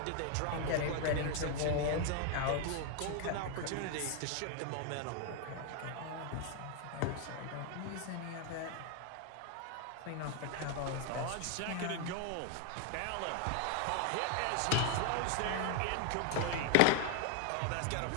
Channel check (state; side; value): different; both; correlation 0.00